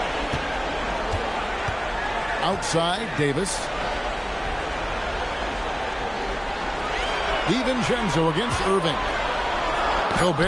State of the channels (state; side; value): identical; both; correlation 1.00